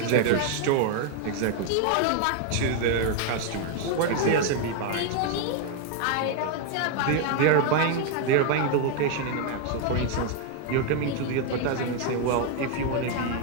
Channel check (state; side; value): different; both; correlation 0.01